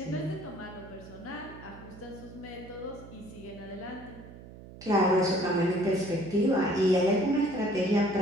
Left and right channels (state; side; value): noise; right; hum, 17 dB below the sound